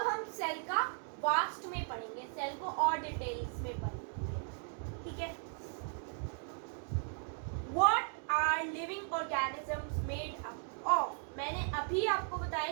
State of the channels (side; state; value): left; silent; 53 dB below the other